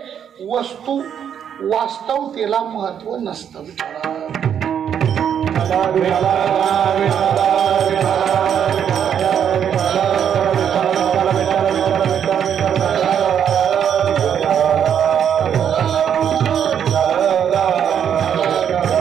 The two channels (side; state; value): left; quieter; 8.6 dB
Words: वस्तू वास्तवतेला महत्व नसतं.